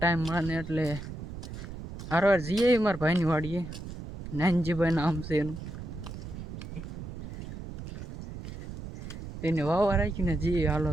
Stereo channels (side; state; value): right; noise; rumble, 10 dB below the sound